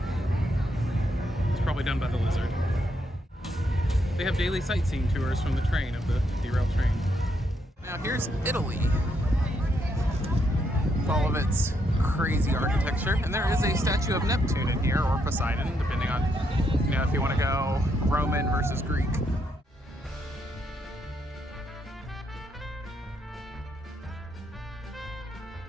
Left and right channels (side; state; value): both; normal; correlation 0.77